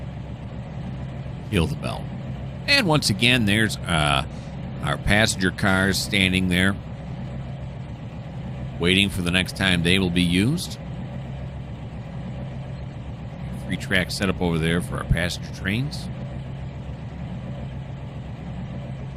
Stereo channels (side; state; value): both; identical; correlation 1.00